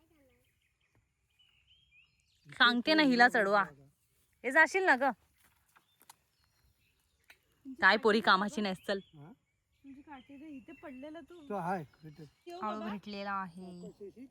सांगते ना हिला चढवा. हे जाशील ना ग. काय पोरी कामाची नाहीस. चल. हा? तुझी काठी दे. इथे पडलेला तू. तो आहे भेटत. ठेव हळू बाबा. भेटलेला आहे.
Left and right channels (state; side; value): identical; both; correlation 1.00